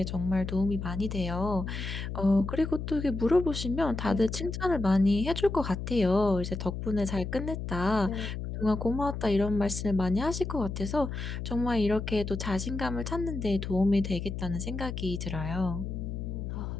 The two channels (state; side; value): noise; left; hum, 5 dB below the sound